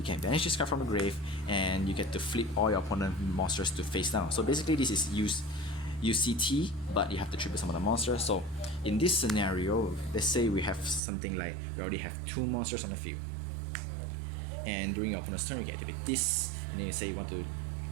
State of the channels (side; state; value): left; drops out; at 11.0 s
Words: can banish this card from the grave and you get to flip all your opponent monsters to face down. So basically this is used use CT, but you have to tribute some of the monsters. So in this scenario, let's say we have something like we already have 2 monsters on the field, and during your opponent's turn you can activate this, and then you say you want to